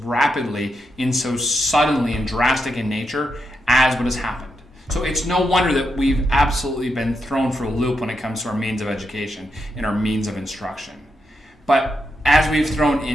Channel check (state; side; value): normal; both; correlation 0.83